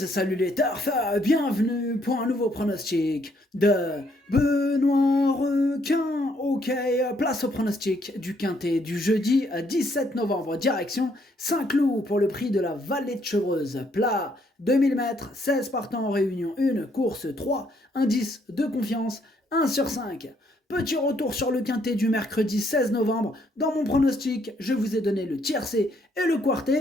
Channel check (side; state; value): both; normal; correlation 0.70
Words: salut les turfeurs, bienvenue pour un nouveau pronostic de Benoît Requin. Ok, place au pronostic du quintet du jeudi 17 novembre, direction Saint-Cloud pour le prix de la Vallée de Chevreuse. Plat 2000 mètres, 16 partants en réunion 1, course 3, indice de confiance 1 sur 5. Petit retour sur le quintet du mercredi 16 novembre. Dans mon pronostic, je vous ai donné le tiercé et le